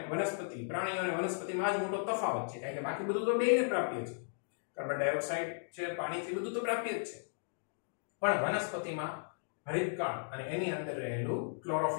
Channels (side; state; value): right; silent; digital silence